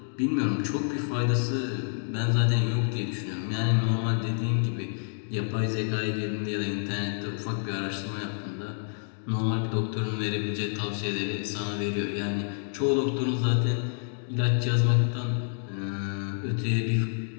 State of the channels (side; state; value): right; silent; digital silence